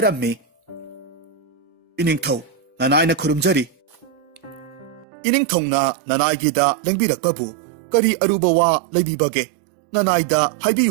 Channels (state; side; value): drops out; left; at 5.1 s